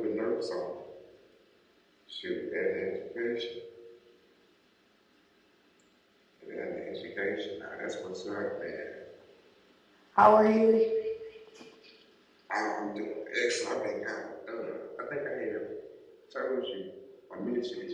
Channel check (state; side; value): identical; both; correlation 1.00